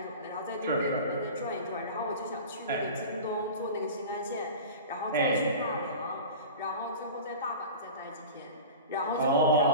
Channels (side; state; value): both; inverted; correlation -0.34